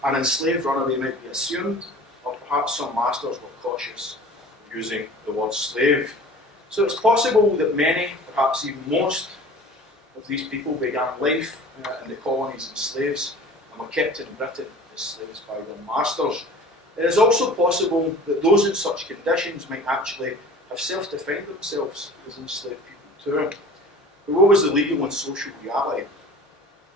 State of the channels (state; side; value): normal; both; correlation 0.43